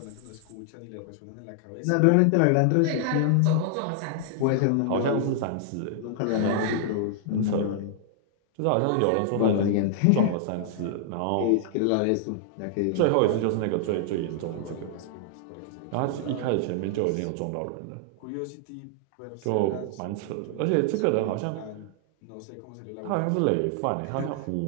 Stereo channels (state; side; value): different; both; correlation -0.01